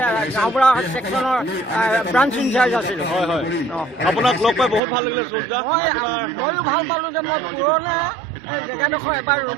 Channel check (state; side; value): drops out; left; at 4.8 s